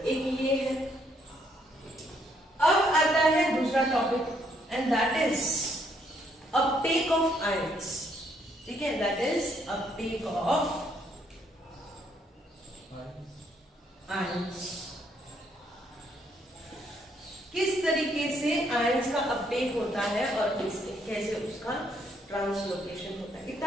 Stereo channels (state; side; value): normal; both; correlation 0.71